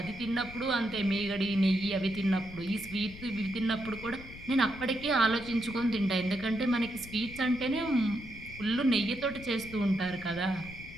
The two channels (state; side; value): noise; left; rumble, 15 dB below the sound